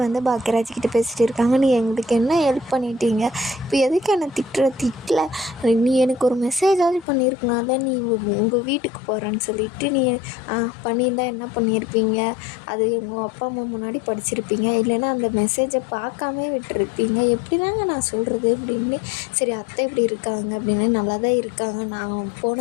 வந்து பாக்கியராஜ் கிட்ட பேசிகிட்டு இருக்காங்க. நீ எங்களுக்கு என்ன ஹெல்ப் பண்ணிட்டீங்க, இப்போ எதுக்கு என்னை திட்டல, நீ எனக்கு ஒரு மெசேஜாவது பண்ணியிருக்கலாம்ல, நீ உங்கள் வீட்டுக்கு போகிறேன்னு சொல்லிவிட்டு நீ பண்ணியிருந்தா என்ன பண்ணியிருப்பீங்க, அது உங்கள் அப்பா அம்மா முன்னாடி படிச்சிருப்பீங்க, இல்லைன்னா அந்த மெசேஜை பார்க்காமே விட்டுருப்பீங்க. எப்படி தாங்க நான் சொல்கிறது அப்படின்னு. சரி அத்தை இப்படி இருக்காங்க அப்படின்னு, நல்லா தான் இருக்காங்க, நான்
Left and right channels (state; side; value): drops out; right; at 7.1 s